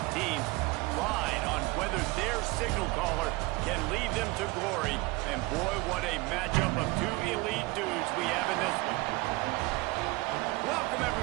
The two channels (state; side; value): quieter; left; 23.1 dB